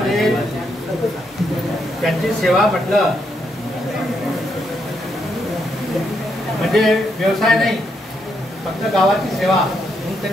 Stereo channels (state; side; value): normal; both; correlation 0.78